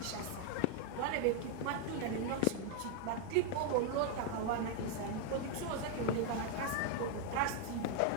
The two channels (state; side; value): different; both; correlation 0.01